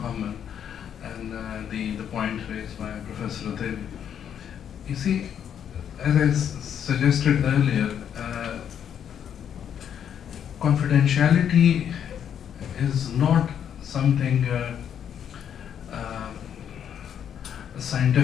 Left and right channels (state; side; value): quieter; right; 8.8 dB